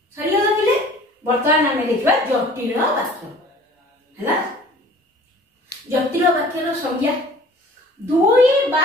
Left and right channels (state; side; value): normal; both; correlation 0.48